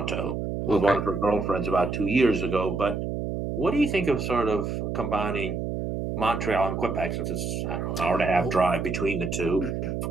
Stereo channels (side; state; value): right; noise; hum, 3 dB below the sound